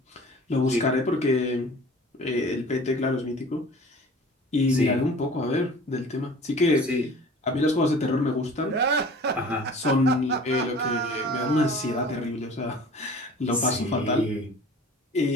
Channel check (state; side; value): normal; both; correlation 0.44